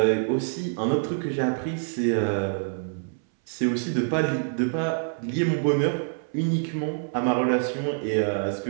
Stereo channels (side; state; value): left; silent; 61 dB below the other